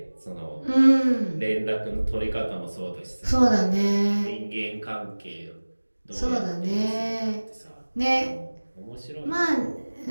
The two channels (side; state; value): both; inverted; correlation -1.00